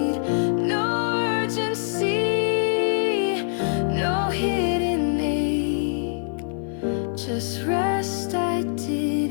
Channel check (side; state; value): right; silent; 62 dB below the other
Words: No urgency, no hidden ache, just rest I